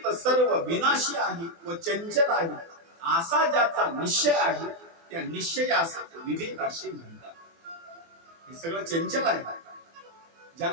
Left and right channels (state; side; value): late; left; 24 ms